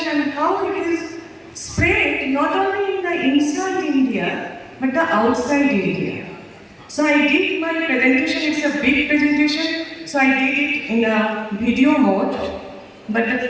and how it is spread not only in the inside India, but the outside India. So I did my presentation, it's a big presentation, so I did it in a video mode. But the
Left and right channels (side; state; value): both; identical; correlation 1.00